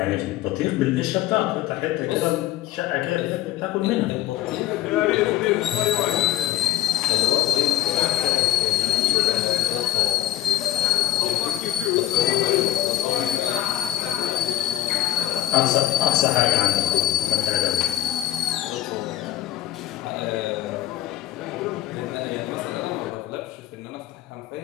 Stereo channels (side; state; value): right; quieter; 13.8 dB